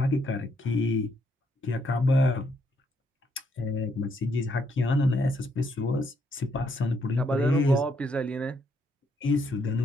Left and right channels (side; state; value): both; normal; correlation 0.74